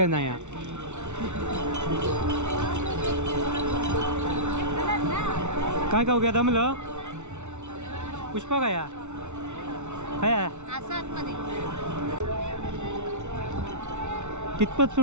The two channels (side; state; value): left; late; 0.83 ms